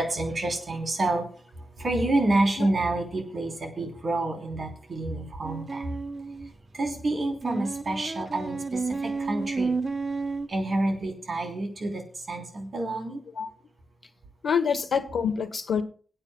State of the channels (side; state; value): both; normal; correlation 0.87